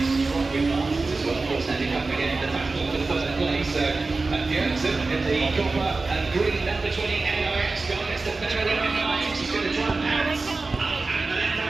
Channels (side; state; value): left; quieter; 3.7 dB